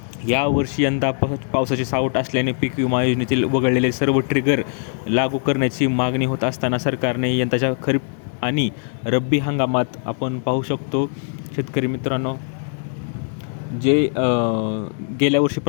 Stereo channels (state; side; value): silent; right; 60 dB below the other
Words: यावर्षी यंदा पावसाची सावट असल्याने पीक विमा योजनेतील वगळलेले सर्व ट्रिगर लागू करण्याची मागणी होत असताना सरकारने यंदाच्या खरीप आणि रब्बी हंगामात आपण पाहू शकतो शेतकरी मित्रांनो, जे गेल्या